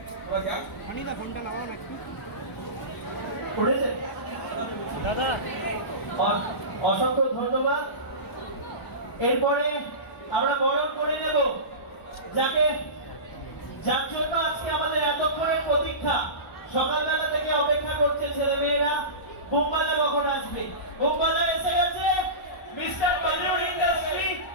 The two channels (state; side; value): late; right; 1.0 ms